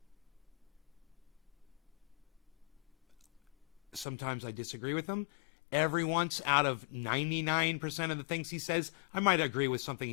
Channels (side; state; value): right; drops out; at 4.0 s